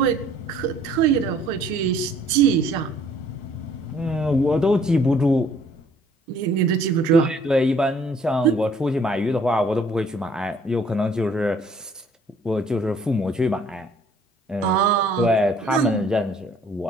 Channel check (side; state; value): both; normal; correlation 0.59